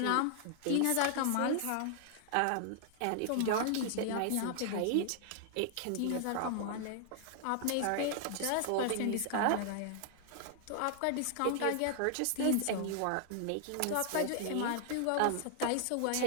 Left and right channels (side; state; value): both; different; correlation 0.00